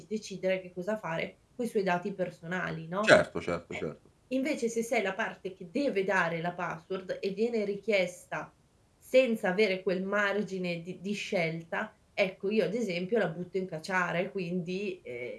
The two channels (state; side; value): identical; both; correlation 1.00